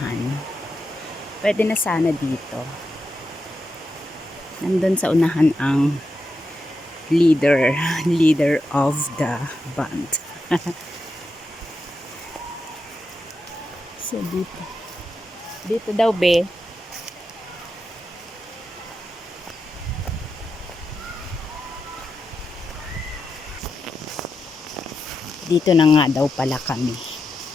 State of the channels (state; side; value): normal; both; correlation 0.87